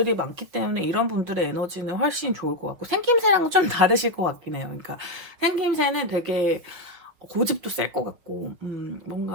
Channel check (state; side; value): late; left; 6.2 ms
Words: 많기 때문에 이런 분들의 에너지는 훨씬 좋을 것 같고 생김새랑은 좀 다르실 것 같긴 해요. 그러니까 생김새는 되게 고집도 셀 것 같고